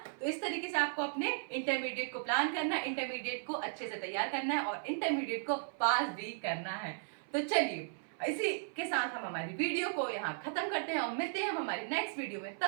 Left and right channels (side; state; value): left; silent; 54 dB below the other